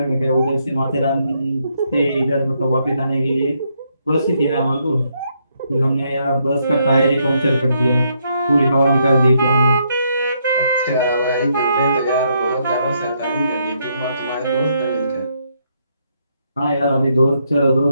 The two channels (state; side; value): inverted; both; correlation -0.75